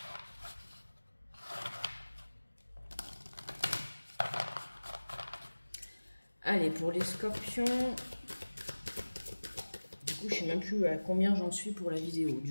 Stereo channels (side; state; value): both; inverted; correlation -1.00